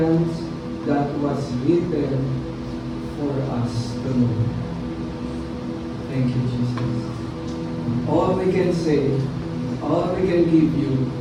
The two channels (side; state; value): both; identical; correlation 1.00